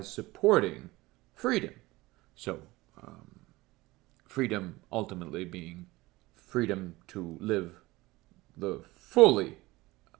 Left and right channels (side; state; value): left; quieter; 20.1 dB